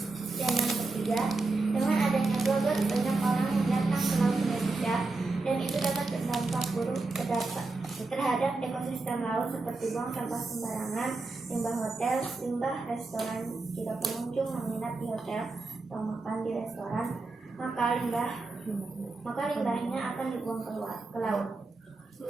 Dan yang ketiga, dengan adanya slogan banyak orang yang datang ke laut Indonesia dan itu dapat berdampak buruk terhadap ekosistem laut seperti buang sampah sembarangan, limbah hotel, limbah restoran. Jika pengunjung menginap di hotel atau makan di restoran, maka limbahnya akan dibuang ke laut.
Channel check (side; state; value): left; quieter; 3.5 dB